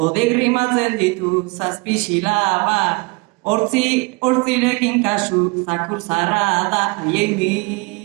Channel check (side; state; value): left; quieter; 28.2 dB